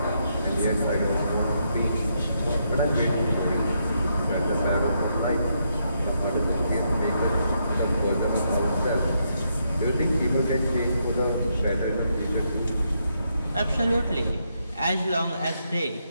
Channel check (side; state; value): both; inverted; correlation -0.78